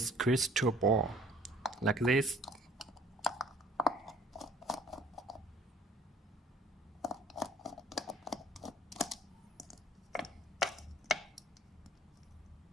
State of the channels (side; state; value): both; normal; correlation 0.55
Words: crystal ball like this.